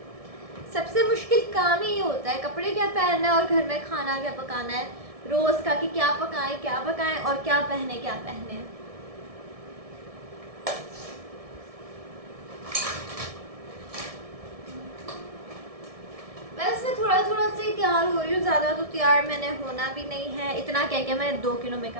सबसे मुश्किल काम ही ये होता है, कपड़े क्या पहनना है और घर में खाना क्या पकाना है रोज़ का, कि क्या पकाएं और क्या पहने। बस मैं थोड़ा थोड़ा से तैयार हो रही हूँ, ज़्यादा तो तैयार मैंने होना भी नहीं है। इतना कह के मैं 2 किलो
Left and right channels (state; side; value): late; left; 1.7 ms